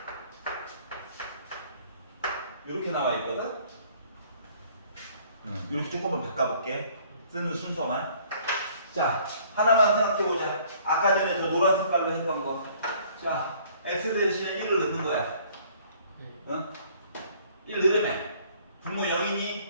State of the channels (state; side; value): inverted; both; correlation -0.57